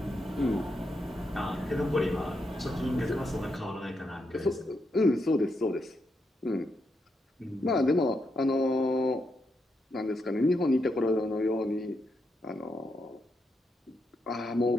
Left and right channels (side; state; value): both; normal; correlation 0.82